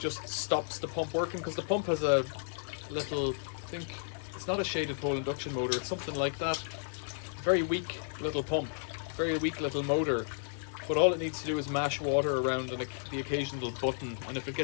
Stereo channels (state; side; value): silent; right; digital silence